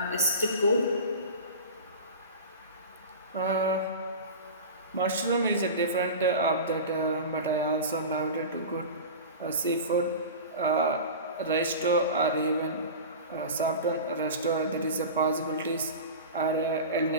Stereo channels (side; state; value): both; inverted; correlation -0.31